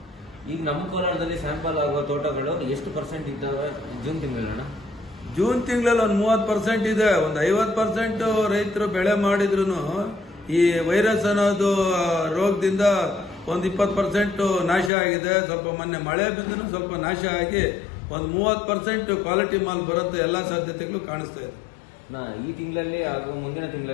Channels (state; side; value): drops out; right; at 14.9 s